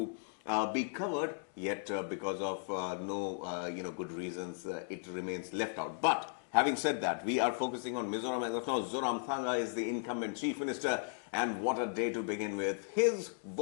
be covered, yet because of no good reasons, it remains left out. But having said that, we are focusing on Mizoram as of now. Zoramthanga is the incumbent chief minister, and what a day to begin with. His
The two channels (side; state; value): right; silent; digital silence